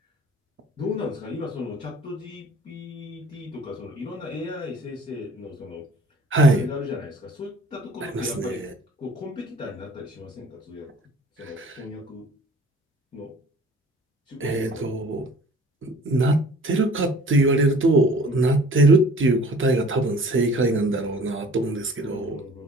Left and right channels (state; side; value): normal; both; correlation 0.49